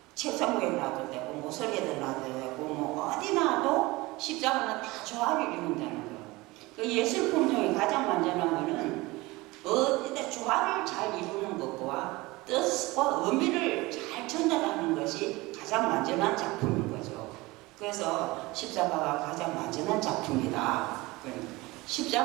책상 위에 놔도 되고 모서리에도 놔도 되고 어디 놔도 십자가는 다 조화를 이룬다는 거예요. 그 예술품 중에 가장 완전한 거는 어디다 조화를 잘 이루는 것과 뜻과 의미를 잘 전달하는 것이 가장 완전한 작품인 거죠. 그래서 십자가가 가장 완전한 작품이다.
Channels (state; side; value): quieter; left; 21.7 dB